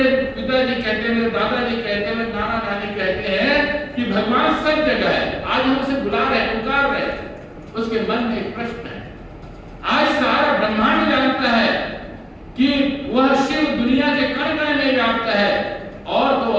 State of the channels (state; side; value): identical; both; correlation 1.00